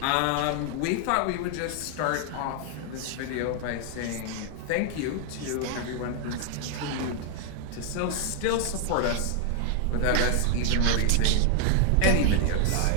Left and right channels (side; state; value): both; different; correlation 0.00